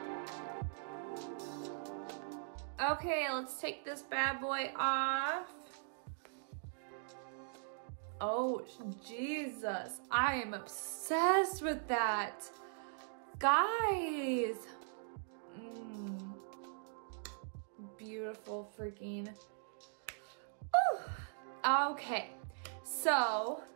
Okay, let's take this bad boy off. Oh, Jesus, I am obsessed with that. Guys. Beautiful freaking. Whew. Okay, so,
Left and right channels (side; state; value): left; silent; digital silence